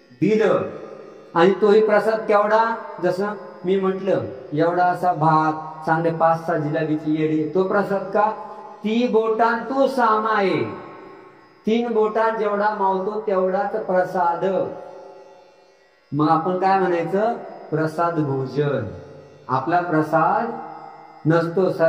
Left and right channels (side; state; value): both; identical; correlation 1.00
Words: दिलं. आणि तोही प्रसाद केवढा, जसं मी म्हटलं एवढा असा भात, चांगले 5-6 जिलेबीची येडी, तो प्रसाद का, 3 बोटां तू सामाये, 3 बोटात जेवढा मावतो तेवढाच प्रसाद. मग आपण काय म्हणायचं, प्रसाद भोजन. आपला प्रसाद नसतो.